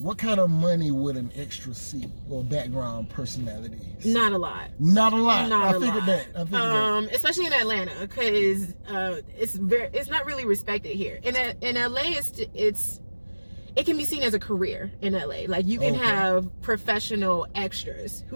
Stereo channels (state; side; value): inverted; both; correlation -1.00